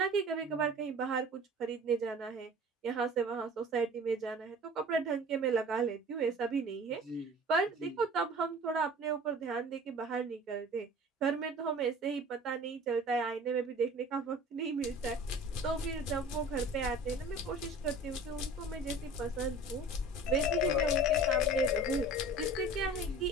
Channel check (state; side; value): normal; both; correlation 0.43